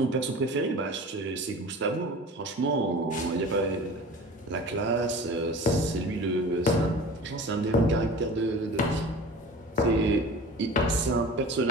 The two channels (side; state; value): both; normal; correlation 0.39